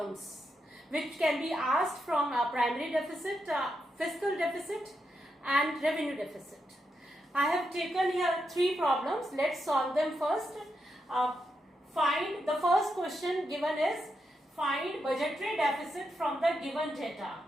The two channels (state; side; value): normal; both; correlation 0.84